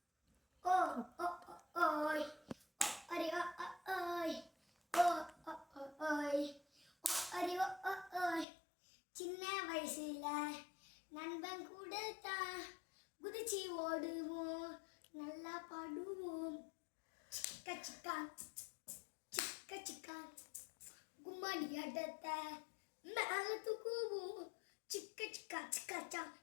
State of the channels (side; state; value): right; drops out; at 8.5 s